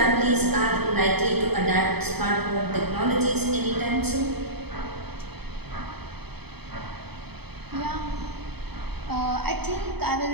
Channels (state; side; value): late; left; 0.97 ms